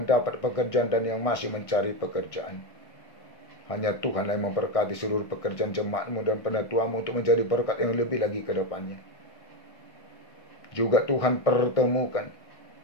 pekerjaan dan yang masih mencari pekerjaan. Hanya Tuhan yang memberkati seluruh pekerjaan jemaat-Mu dan penatua-Mu untuk menjadi berkat yang lebih lagi ke depannya. Juga Tuhan pertemukan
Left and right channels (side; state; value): right; late; 1.6 ms